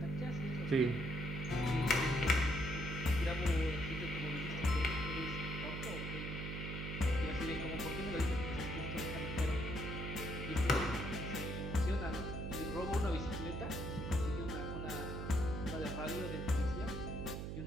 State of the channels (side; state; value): right; noise; hum, 5 dB below the sound